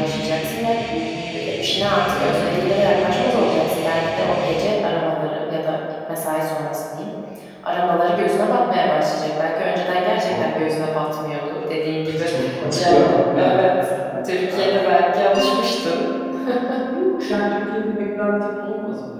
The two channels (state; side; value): identical; both; correlation 1.00